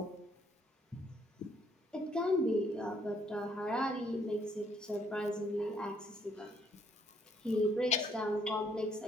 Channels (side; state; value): both; normal; correlation 0.68